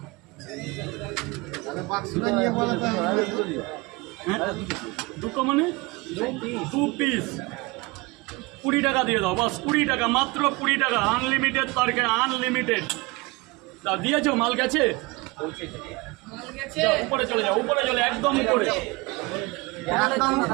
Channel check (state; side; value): quieter; left; 24.5 dB